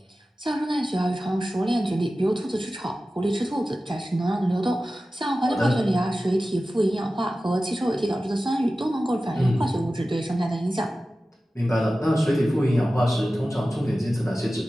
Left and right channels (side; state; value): both; normal; correlation 0.95